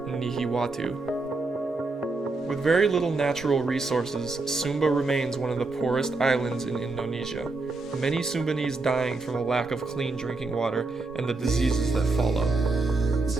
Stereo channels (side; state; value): left; quieter; 3.5 dB